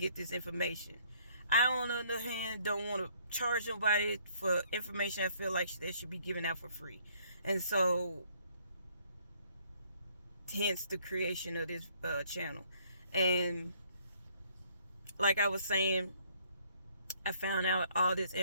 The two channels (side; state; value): both; inverted; correlation -0.64